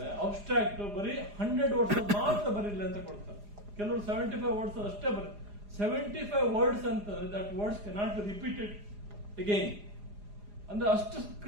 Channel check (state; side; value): late; left; 4.9 ms